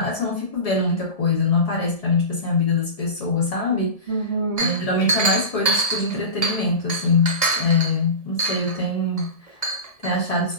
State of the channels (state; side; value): late; right; 1.7 ms